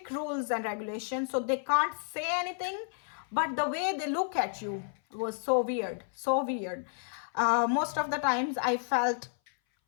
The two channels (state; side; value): silent; right; 57 dB below the other